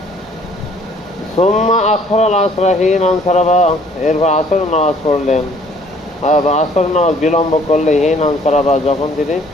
সুম্মা আখারাল আসরা হিনা ইনসারাফা, এরপর আসর নামাজ পড়লেন, আসর নামাজ বিলম্ব করলে হিনা ইনসারাফা, যখন তিনি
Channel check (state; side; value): normal; both; correlation 0.58